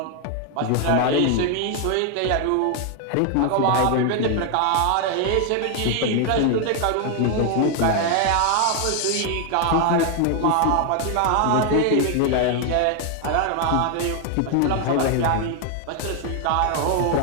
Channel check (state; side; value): different; both; correlation 0.00